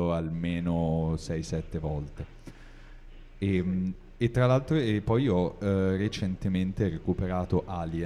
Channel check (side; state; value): both; identical; correlation 1.00